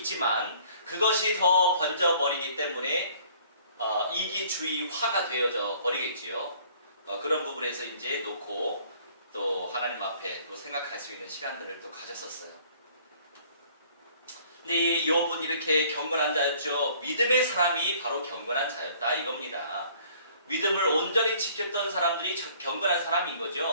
그것이 더 번져버리기 때문에 이기주의화가 되어져 버리겠지요. 그런 부분에서 이제 놓고 또 하나님 앞에 또 생각할 수 있는 시간들을 또 가졌었어요. 근데 이 욥은 이렇게 경건한 자였죠. 믿음의 사람이 바로 경건한 자였다 이겁니다. 믿음을 온전히 지켰던 사람들이 경건한 사람인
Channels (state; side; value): inverted; both; correlation -0.56